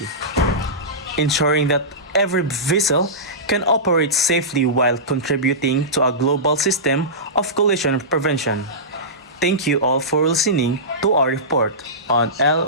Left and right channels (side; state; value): both; normal; correlation -0.18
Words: ensuring that every vessel can operate safely while contributing to a global system of collision prevention. Thank you all for listening to our report on